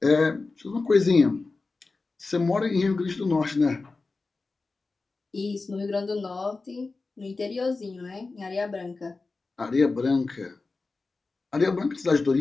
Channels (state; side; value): quieter; right; 3.8 dB